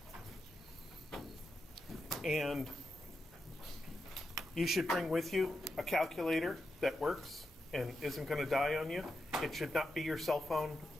And you should bring with you a calculator that works and isn't going to die on you. It should not be your cell phone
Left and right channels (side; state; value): both; normal; correlation 0.87